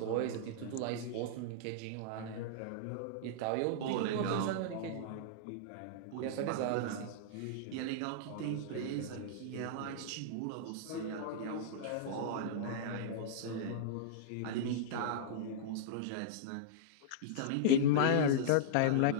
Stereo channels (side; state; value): both; different; correlation -0.02